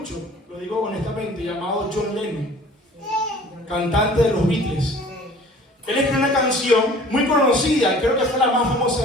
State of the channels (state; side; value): normal; both; correlation 0.48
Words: lo digo honestamente, llamado John Lennon, cantante de los Beatles. Él escribió una canción muy conocida, creo que fue la más